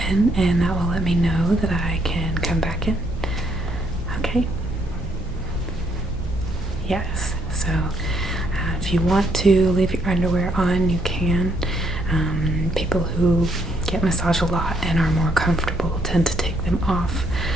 and that will let me know that I can come back in. Okay. Yes. So if you want to leave your underwear on, you can. People who get massaged a lot and are more comfortable tend to take them off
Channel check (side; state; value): both; normal; correlation 0.71